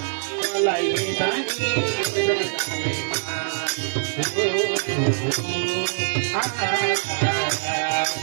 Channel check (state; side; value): silent; left; 56 dB below the other